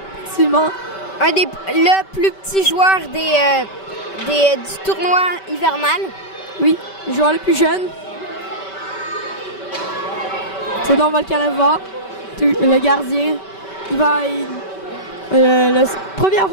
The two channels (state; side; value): late; right; 5.2 ms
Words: Effectivement. Le plus petit joueur du tournoi hivernal. Oui, le joueur le plus jeune. Theodore Volkanova, le gardien. La première